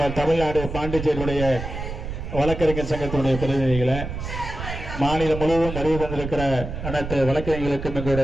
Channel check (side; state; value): right; noise; rumble, 7 dB below the sound